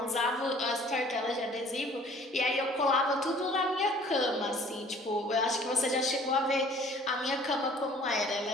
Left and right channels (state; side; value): normal; both; correlation 0.53